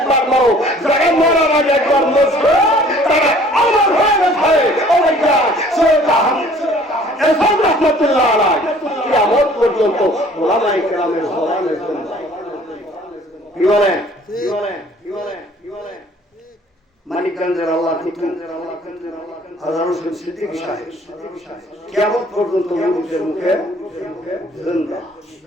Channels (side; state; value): both; normal; correlation 0.54